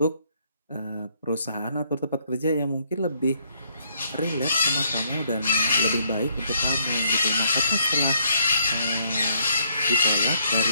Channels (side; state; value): both; inverted; correlation -0.69